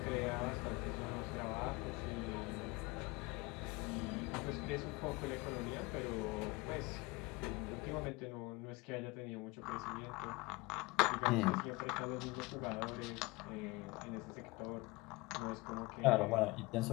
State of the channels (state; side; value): quieter; right; 23.4 dB